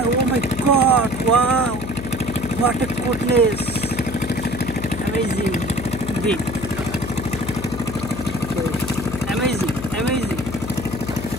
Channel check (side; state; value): left; noise; hum, 8 dB below the sound